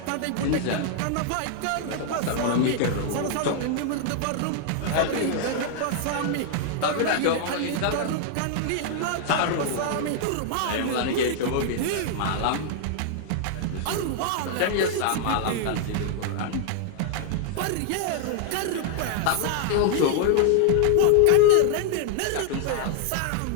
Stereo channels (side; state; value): both; different; correlation 0.00